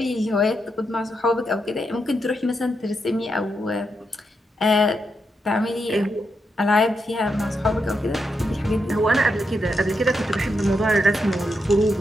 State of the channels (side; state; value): both; normal; correlation 0.84